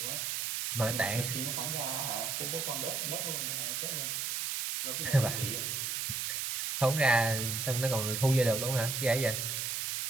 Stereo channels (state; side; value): noise; right; hiss, 1 dB below the sound